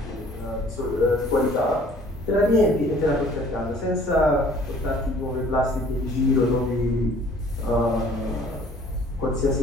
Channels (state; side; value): normal; both; correlation 0.54